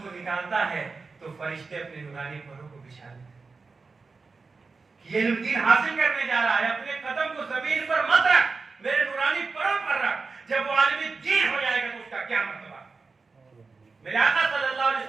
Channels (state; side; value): quieter; left; 4.3 dB